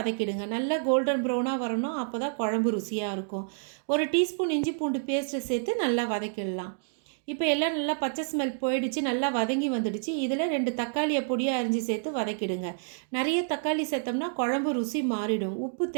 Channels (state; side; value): silent; left; digital silence